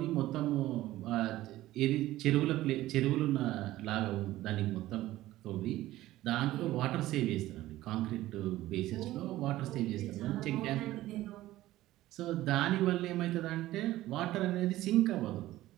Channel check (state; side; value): quieter; left; 15.8 dB